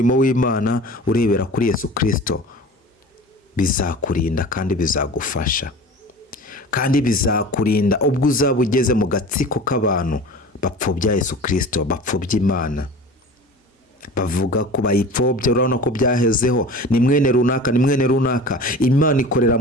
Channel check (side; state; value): both; normal; correlation 0.38